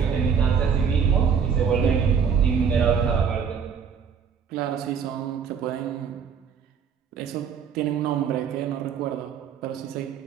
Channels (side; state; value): left; quieter; 6.8 dB